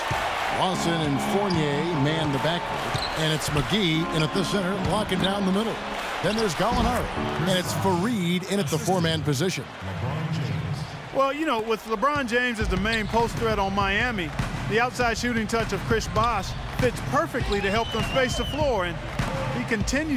Lawson and Fournier man the backcourt, and it's McGee in at the center, locking down the middle. Then there's Gallinari, and it's Fareed in at the 4-man position. Well, you know, with LeBron James as the main post threat on Miami, the outside shooting touch of Chris Bosh fits perfectly to help them space the floor, and he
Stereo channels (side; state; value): both; identical; correlation 1.00